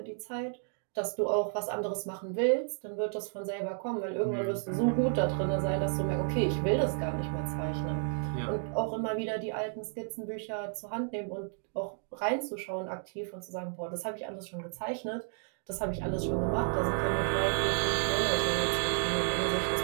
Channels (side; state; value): left; silent; 56 dB below the other